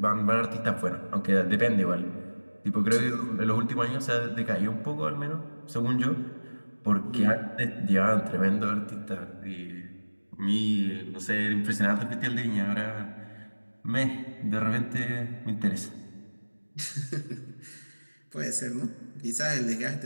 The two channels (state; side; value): inverted; both; correlation -1.00